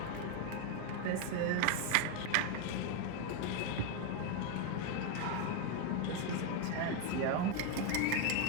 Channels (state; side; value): different; both; correlation 0.01